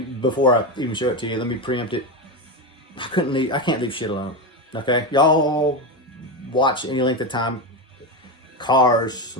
before I even show it to you, let me preempt it. I can't leave shit alone. Okay? Y'all watch any length of time. Cars,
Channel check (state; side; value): normal; both; correlation 0.15